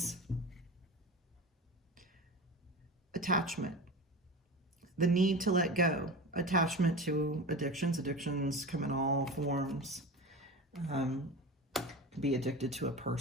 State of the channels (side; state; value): both; normal; correlation 0.30